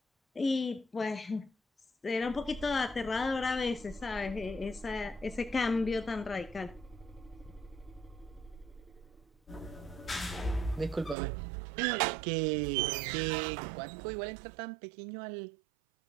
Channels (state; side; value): drops out; left; at 11.2 s